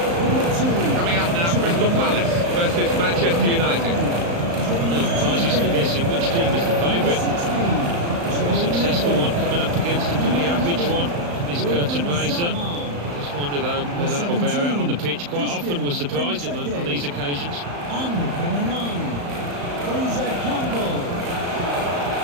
Coming up now, Crystal Palace versus Manchester United. No prizes for guessing which team is the favourite. A successful one coming up against a pretty average one in this curtain raiser. Just wonder though whether it'll bear out on the pitch. Quite often we're surprised on these occasions. And number 9, Fraser Campbell.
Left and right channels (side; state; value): left; late; 35 ms